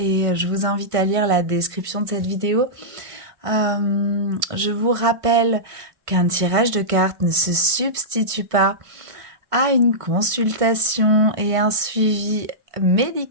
je vous invite à lire la description de cette vidéo. Je vous rappelle qu'un tirage de cartes ne se substitue pas à une consultation et un suivi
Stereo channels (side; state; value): left; late; 1.5 ms